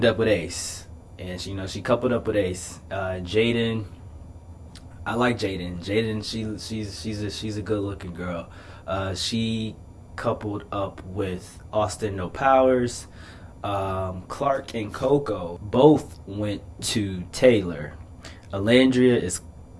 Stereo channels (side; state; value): both; identical; correlation 1.00